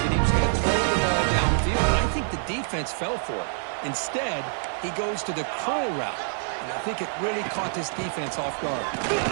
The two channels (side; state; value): left; silent; digital silence